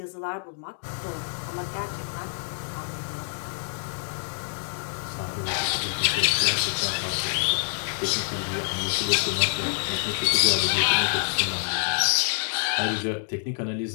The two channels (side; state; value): right; silent; 60 dB below the other